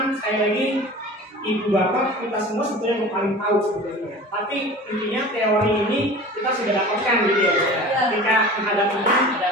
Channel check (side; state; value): both; normal; correlation 0.38